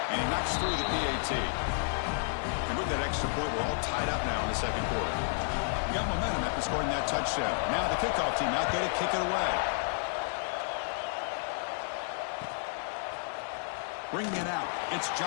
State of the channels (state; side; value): silent; right; digital silence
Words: And he knocks through the PAT. And with that extra point, we're all tied up now in the 2nd quarter. We got momentum after scoring that touchdown. Now the kickoff team out there to kick it away. Bringing it out, it's